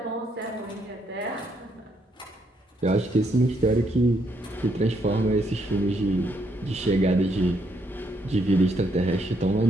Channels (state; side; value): normal; both; correlation 0.74